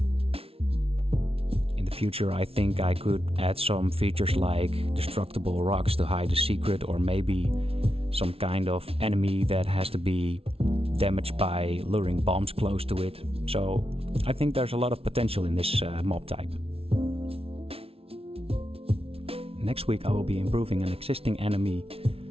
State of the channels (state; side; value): late; left; 0.28 ms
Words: In the future, I think I could add some features like destructible rocks to hide a secret, or maybe some kind of enemy that has to be damaged by luring bombs close to it. So I think there's a lot of potential in this mob type. Next week I will be improving an existing enemy